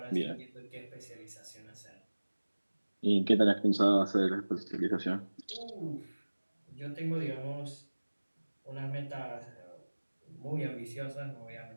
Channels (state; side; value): inverted; both; correlation -1.00